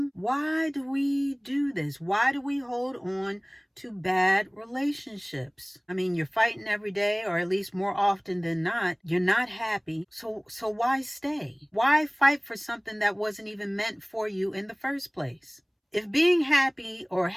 Why do we do this? Why do we hold on to bad relationships? I mean, you're fighting every day, or at least more often than not. You're not happy. So why stay? Why fight for something that wasn't even meant for you in the first place? If being happy or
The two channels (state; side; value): identical; both; correlation 1.00